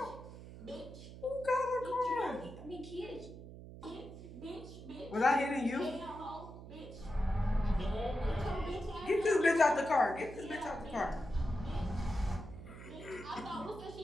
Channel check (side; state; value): right; noise; hum, 14 dB below the sound